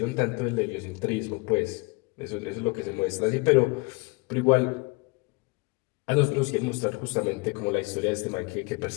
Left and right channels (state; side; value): quieter; right; 27.3 dB